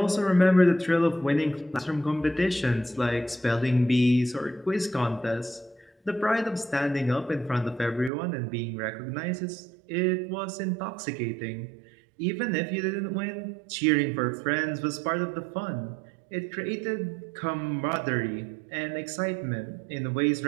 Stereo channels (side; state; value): left; drops out; at 8.1 s